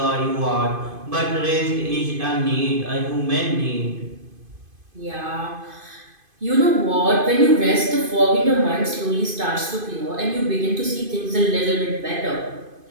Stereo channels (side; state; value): left; late; 2.5 ms